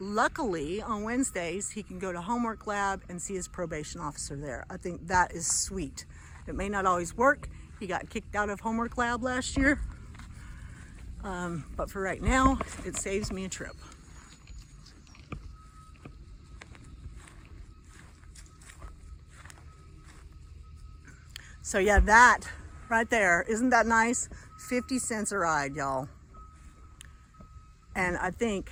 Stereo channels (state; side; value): identical; both; correlation 1.00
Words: on Wednesdays, he can go to homework lab and see his probation officer there. I think that is sweet. It may not always work. He got kicked out of homework lab last year. But for right now, it saves me a trip. So yeah, that right there, isn't that nice? 50 cents a ride, y'all. And I think